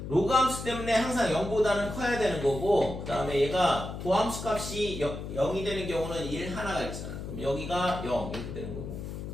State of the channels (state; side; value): noise; left; hum, 8 dB below the sound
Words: 로그 함수 때문에 항상 0보다는 커야 되는 거고 그 다음에 얘가 도함수 값이 0이 되는 경우는 1 하나가 있잖아. 그럼 여기가 0 이렇게 되는 거고